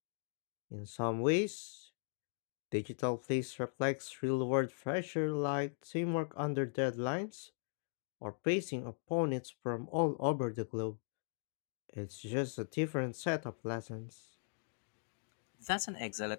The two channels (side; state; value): right; silent; digital silence